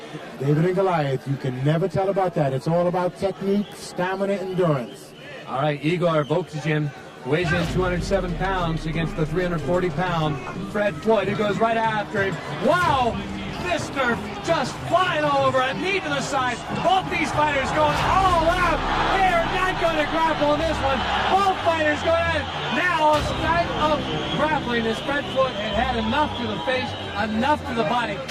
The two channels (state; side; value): identical; both; correlation 1.00